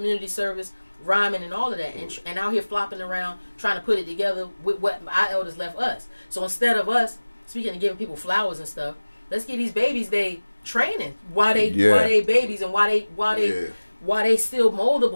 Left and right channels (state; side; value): inverted; both; correlation -1.00